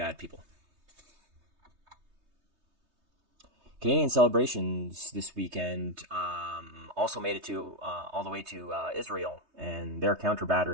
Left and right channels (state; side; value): late; left; 3.2 ms